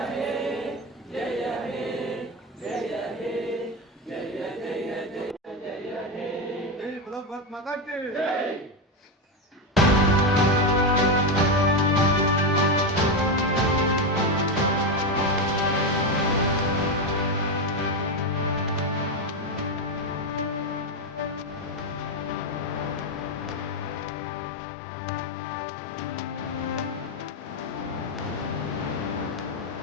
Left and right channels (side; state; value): both; normal; correlation 0.11